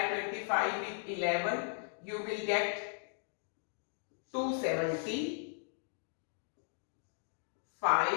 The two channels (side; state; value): right; silent; digital silence